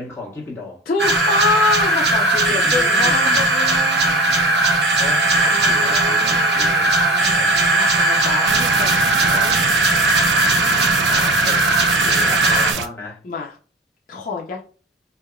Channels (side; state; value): both; normal; correlation 0.32